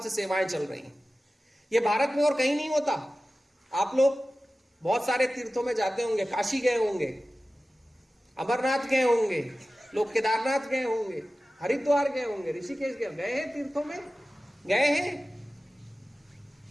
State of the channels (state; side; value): normal; both; correlation 0.95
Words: सेवाएं चल रही हैं। ये भारत में और कहीं नहीं होता। आप लोग बहुत सारे तीर्थों में जाते होंगे, काशी गए होंगे, अमरनाथ गए होंगे, लोग केदारनाथ गए होंगे, हरिद्वार गए होंगे, ऋषिकेश गए हैं, तीर्थों में गए हैं।